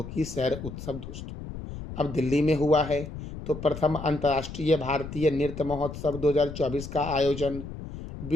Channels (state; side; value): noise; left; rumble, 10 dB below the sound